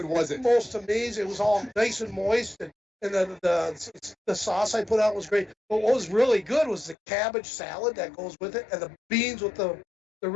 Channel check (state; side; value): drops out; right; at 7.0 s